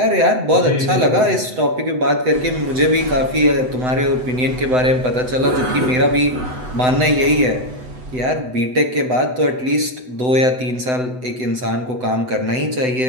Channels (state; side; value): late; left; 7.9 ms